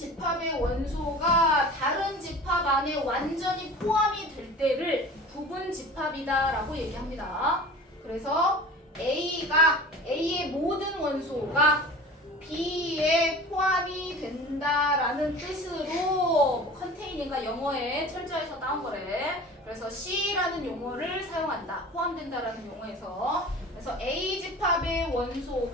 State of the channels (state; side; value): normal; both; correlation 0.39